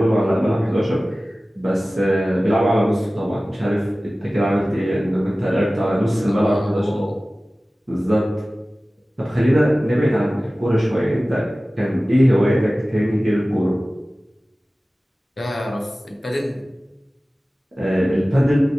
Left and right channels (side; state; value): both; normal; correlation 0.97